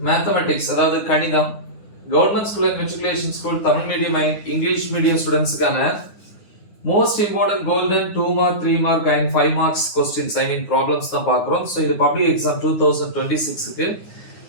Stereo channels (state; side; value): late; right; 9.7 ms